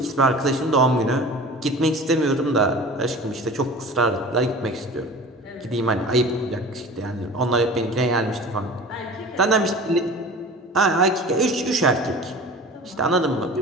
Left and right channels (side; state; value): both; normal; correlation 0.39